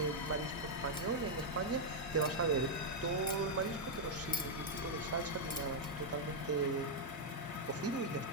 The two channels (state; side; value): normal; both; correlation -0.02